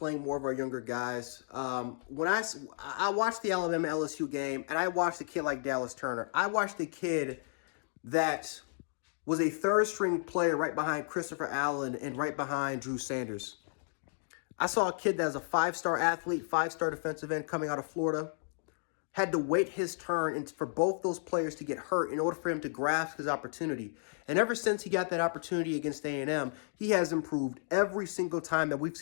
more of our younger guys. When I watched the Alabama LSU game, and I watched a kid like Dallas Turner. I watched a kid that was a third string player right behind Christopher Allen and right behind Drew Sanders. I saw a kid that was a five-star athlete, five-star defensive end coming out of Florida. Had to wait his turn and for both those players to get hurt in order for him to grasp his opportunity. And ever since he got that opportunity against A&M, he has improved every single time that we've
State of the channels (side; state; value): right; silent; digital silence